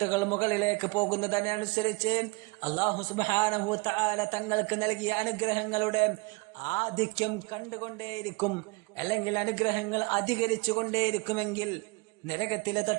മുകളിലേക്ക് പോകുന്നതിനനുസരിച്ച് അല്ലാഹു സുബ്ഹാനഹു വ തആല തങ്ങൾക്ക് നൽകിയ അനുഗ്രഹങ്ങളുടെ ആധിക്യം കണ്ടുകൊണ്ടേയിരിക്കും, അല്ലെങ്കിൽ അനുഗ്രഹങ്ങൾ അധികരിച്ചു കൊണ്ടേയിരിക്കുമെങ്കിൽ നരകത്തിലെ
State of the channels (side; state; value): left; quieter; 26.6 dB